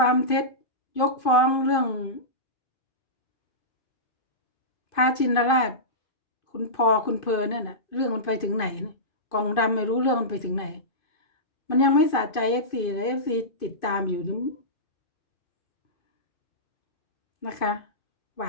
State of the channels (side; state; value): right; late; 2.5 ms